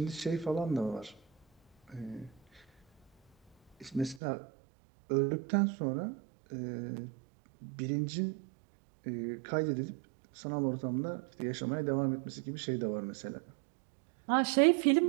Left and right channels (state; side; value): drops out; left; at 4.2 s